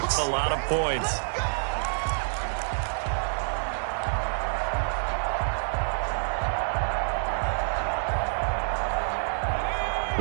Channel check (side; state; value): left; silent; digital silence